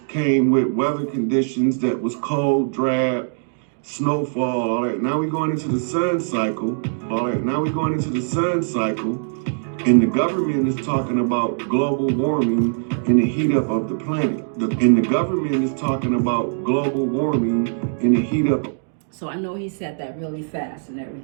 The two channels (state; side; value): silent; left; digital silence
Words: came with weather conditions that was cold, drab, snowfall, all that. Now we going into the sun cycle, all that. Now we going into the sun cycle, and the government is talking about global warming and the heat up of the planet. And the government is talking about global warming and the heat up. So I know he said that really fast and